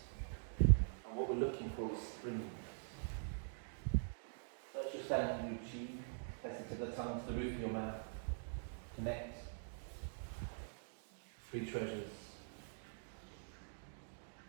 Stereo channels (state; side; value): silent; left; digital silence